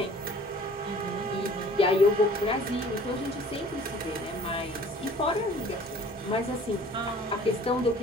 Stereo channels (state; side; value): normal; both; correlation 0.50